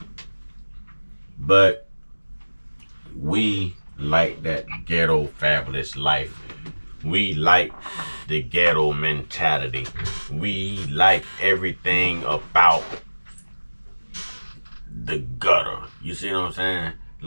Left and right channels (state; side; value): inverted; both; correlation -1.00